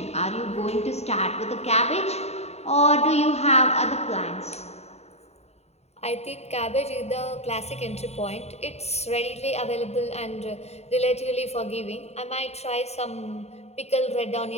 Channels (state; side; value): late; right; 0.31 ms